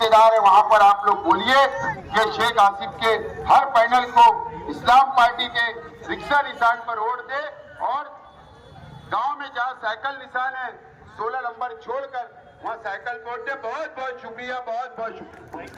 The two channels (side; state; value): both; identical; correlation 1.00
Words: है वहां पर आप लोग बोलिए कि शेख आसिफ के हर पैनल को इस्लाम पार्टी के रिक्शा निशान पर वोट दे। और गांव में जहां साइकिल निशान है 16 नंबर छोड़कर वहां साइकिल वोट दे। बहुत बहुत शुक्रिया, बहुत बहुत शुक्रिया।